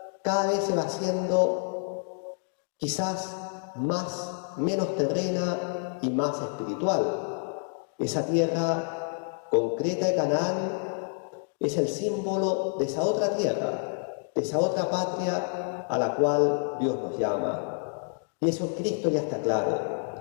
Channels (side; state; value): right; silent; 59 dB below the other